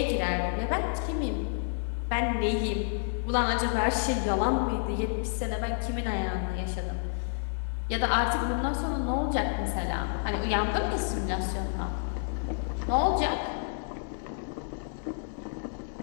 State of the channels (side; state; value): right; silent; 58 dB below the other